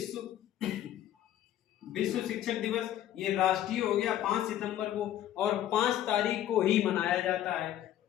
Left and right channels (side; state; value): right; quieter; 12.1 dB